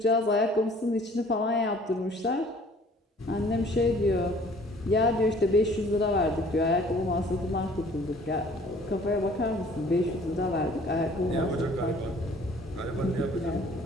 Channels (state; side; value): normal; both; correlation 0.54